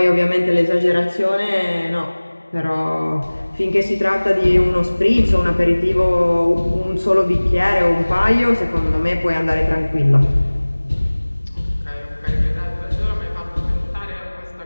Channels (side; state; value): both; inverted; correlation -1.00